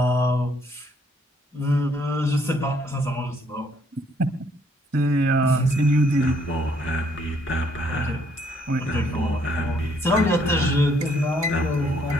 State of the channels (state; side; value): normal; both; correlation 0.68